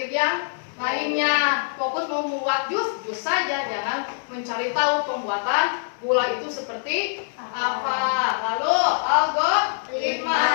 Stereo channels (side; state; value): right; silent; digital silence